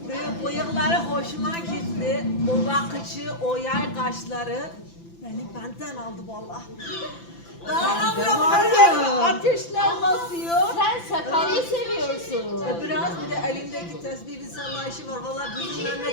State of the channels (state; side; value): late; right; 5.9 ms